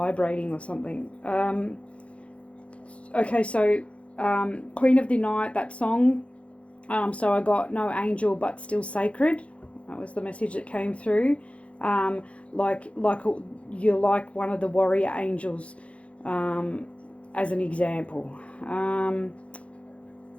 or something. Okay, so Queen of the Night, that song. So I got no angel but still sacred. That was the message that came through. Like you're like one of the warrior angels, as an example.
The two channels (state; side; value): late; right; 0.062 ms